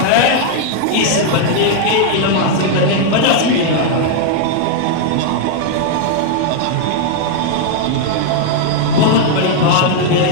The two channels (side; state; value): both; different; correlation -0.01